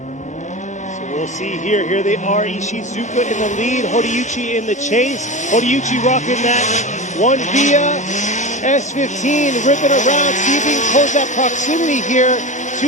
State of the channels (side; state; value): both; normal; correlation 0.26